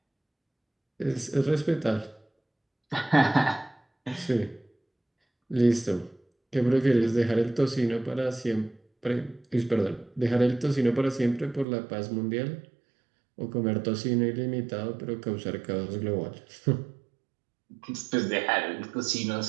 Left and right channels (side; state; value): left; drops out; at 11.7 s